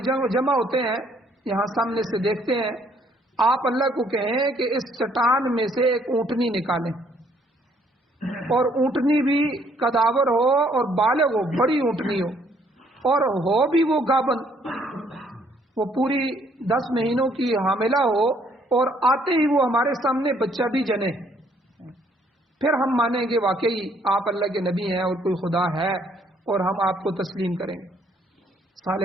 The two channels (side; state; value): both; normal; correlation 0.65